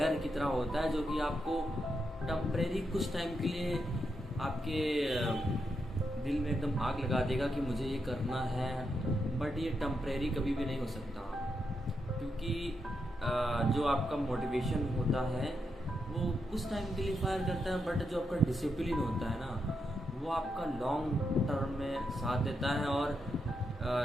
की तरह होता है, जो कि आपको टम्परेरी कुछ टाइम के लिए आपके दिल में एकदम आग लगा देगा कि मुझे ये करना है। बट ये टम्परेरी कभी भी नहीं हो सकता, क्योंकि जो आपका मोटिवेशन होता है वो कुछ टाइम के लिए फायर करता है, बट जो आपका डिसिप्लिन होता है ना, वो आपका लॉन्ग टर्म में साथ देता है। और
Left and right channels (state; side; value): normal; both; correlation 0.83